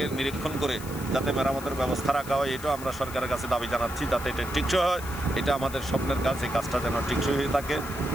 নিরীক্ষণ করে যাতে মেরামতের ব্যবস্থা রাখা হয়, এটাও আমরা সরকারের কাছে দাবি জানাচ্ছি যাতে এটা টিকসই হয়। এটা আমাদের স্বপ্নের কাজ, এই কাজটা যেন টিকসই হয়ে থাকে।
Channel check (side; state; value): left; noise; hiss, 15 dB below the sound